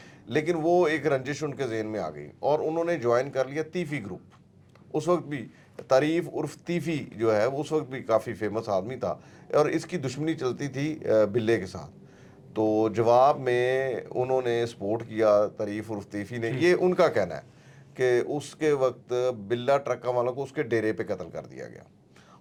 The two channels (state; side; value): identical; both; correlation 1.00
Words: लेकिन वो एक रंजिश उनके ज़हन में आ गई और उन्होंने ज्वाइन कर लिया तीफ़ी ग्रुप। उस वक्त भी तारीफ़ उर्फ तीफ़ी जो है उस वक्त भी काफ़ी फेमस आदमी था और इसकी दुश्मनी चलती थी बिल्ले के साथ। तो जवाब में उन्होंने सपोर्ट किया तारीफ़ उर्फ तीफ़ी ने। ये उनका कहना है कि उसके वक्त बिल्ला ट्रक्का वालों को उसके डेरे पे कत्ल कर दिया गया